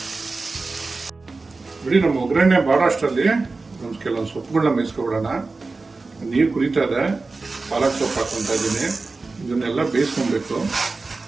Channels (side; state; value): left; quieter; 3.8 dB